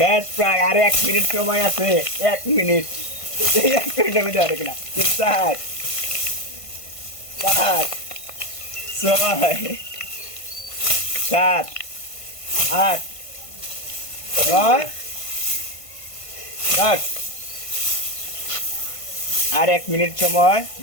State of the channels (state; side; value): late; right; 1.5 ms